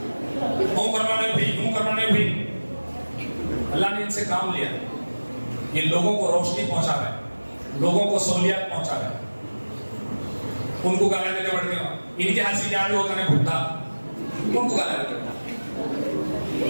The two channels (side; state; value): both; inverted; correlation -1.00